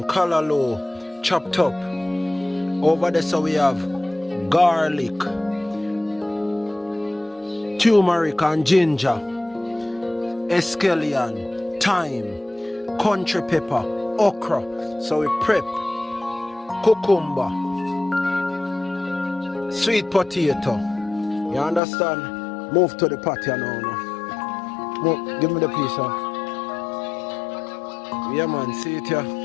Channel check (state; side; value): drops out; right; at 21.8 s